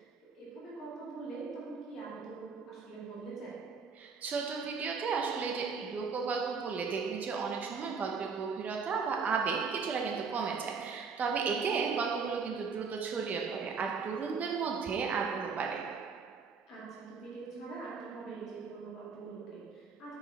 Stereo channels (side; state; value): left; quieter; 5.3 dB